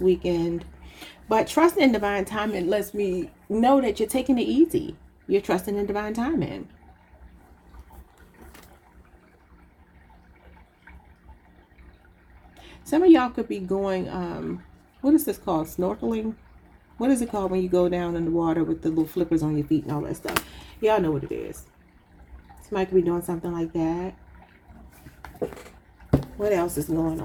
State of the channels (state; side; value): identical; both; correlation 1.00